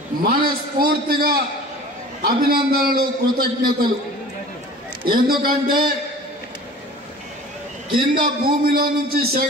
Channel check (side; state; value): both; normal; correlation 0.42